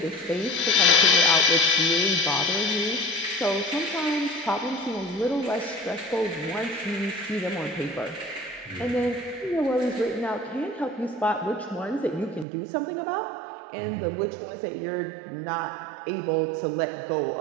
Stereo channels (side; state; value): left; drops out; at 12.5 s